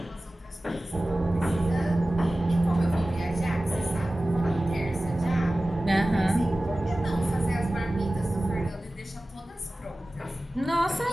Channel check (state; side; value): normal; both; correlation 0.97